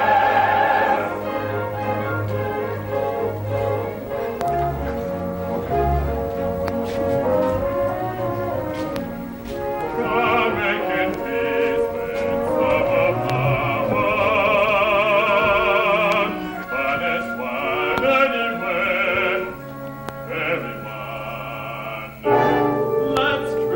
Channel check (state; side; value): identical; both; correlation 1.00